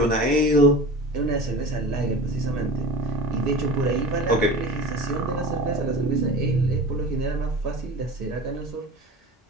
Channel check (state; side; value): normal; both; correlation 0.34